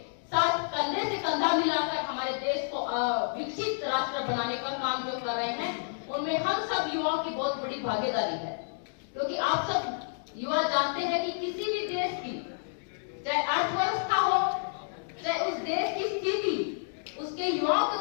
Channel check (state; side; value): silent; right; digital silence